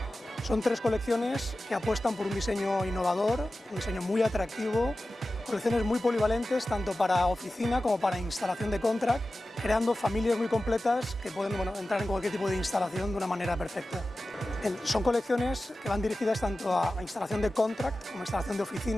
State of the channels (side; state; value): both; normal; correlation 0.95